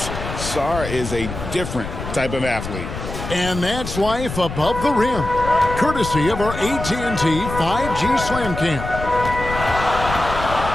Sarr is a different type of athlete. And that's life above the rim, courtesy of our AT&T 5G Slam Cam.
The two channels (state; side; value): noise; left; rumble, 8 dB below the sound